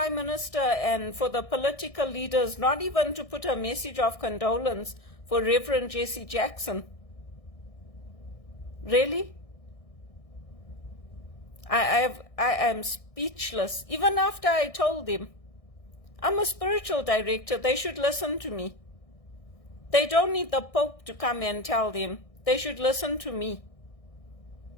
Minister and for the political leaders, not even to put a message of condolence for Reverend Jesse Jackson. Really? I am speechless. Even after I told him, I'm a spiritual director, they should listen to me. They don't need the Pope to come and tell them. They should listen to me.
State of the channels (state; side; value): late; right; 1.6 ms